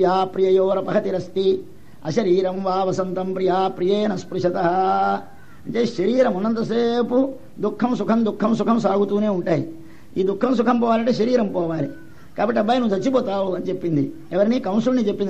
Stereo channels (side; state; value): both; identical; correlation 1.00